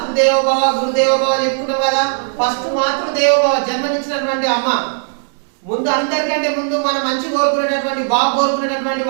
గురుదేవోభవ చెప్పుకున్నాం కదా. ఫస్ట్ మాతృదేవోభవ, జన్మనిచ్చినటువంటి అమ్మ. ముందు అందరికంటే ముందు మనం మంచి కోరుకునేటటువంటి, బాగు కోరుకునేటటువంటి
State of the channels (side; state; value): left; silent; digital silence